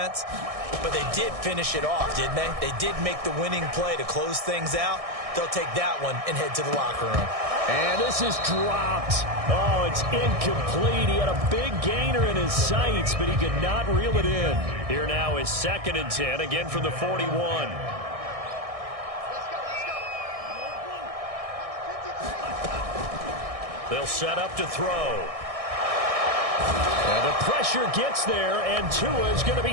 but they did finish it off, didn't they? They did make the winning play to close things out. They'll take that one and head to the locker room. And this is dropped. Oh, it's incomplete. He had a big gainer in his sights, but he could not reel it in. Here now is 2nd and 10, again from the 41. They'll set up to throw. And the pressure gets there, and Tua is going to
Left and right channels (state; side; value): late; left; 1.6 ms